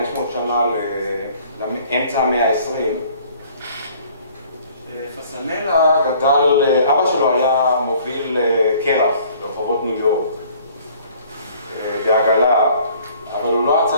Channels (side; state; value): both; inverted; correlation -0.55